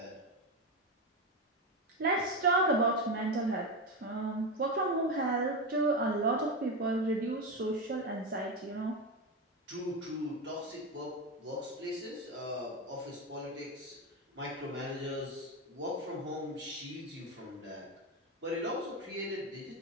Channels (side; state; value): both; normal; correlation 0.14